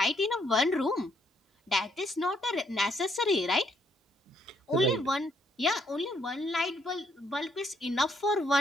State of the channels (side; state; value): both; normal; correlation 0.71